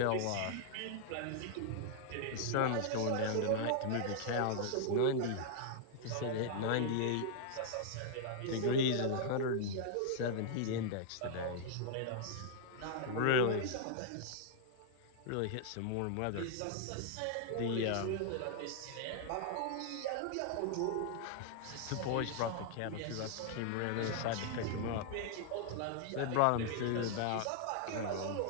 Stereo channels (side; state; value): both; different; correlation -0.01